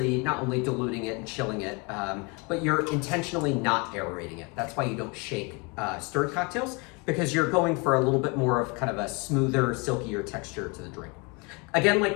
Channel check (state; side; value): quieter; right; 29.0 dB